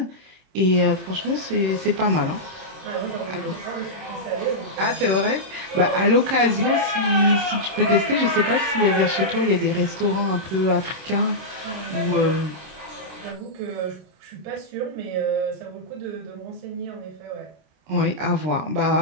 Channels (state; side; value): late; left; 26 ms